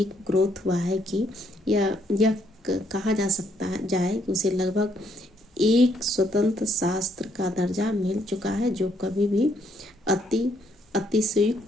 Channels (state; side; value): normal; both; correlation 0.71